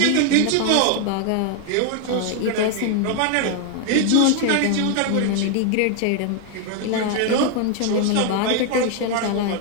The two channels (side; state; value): both; different; correlation 0.00